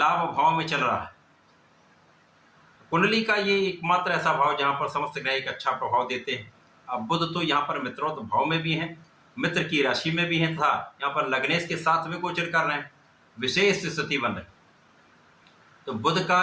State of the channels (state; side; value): identical; both; correlation 1.00